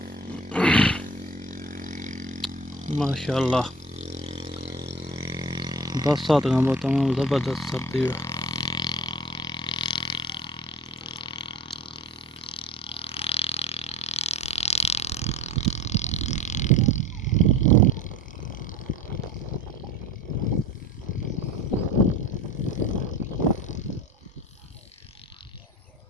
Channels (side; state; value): both; normal; correlation 0.39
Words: माशाल्लाह। बरसात का तमाम ज़बरदस्त सर्दी है।